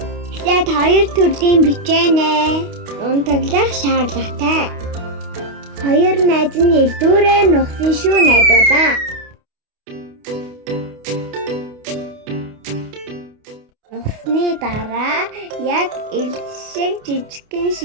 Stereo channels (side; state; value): left; late; 28 ms